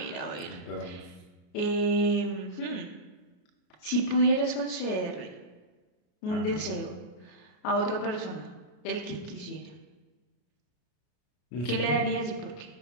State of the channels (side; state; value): right; late; 33 ms